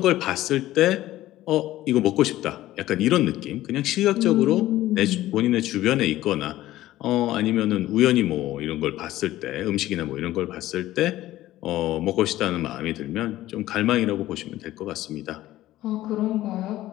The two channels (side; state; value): right; quieter; 15.2 dB